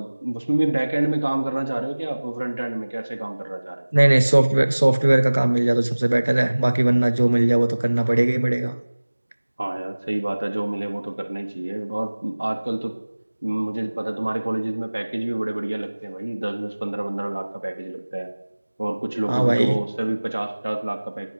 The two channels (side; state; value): both; inverted; correlation -1.00